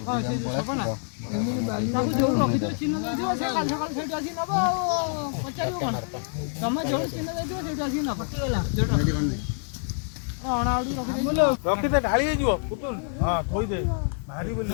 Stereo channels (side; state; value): right; silent; 55 dB below the other